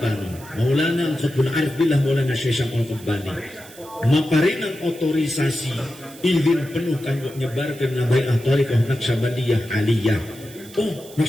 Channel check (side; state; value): right; noise; hiss, 20 dB below the sound